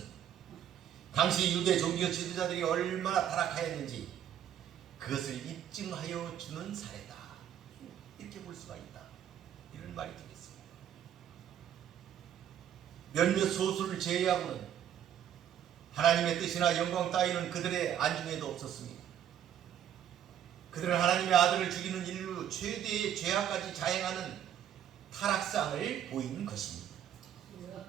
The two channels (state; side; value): quieter; left; 10.1 dB